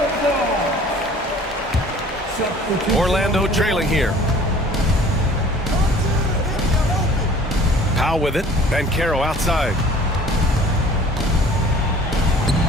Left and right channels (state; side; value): normal; both; correlation 0.49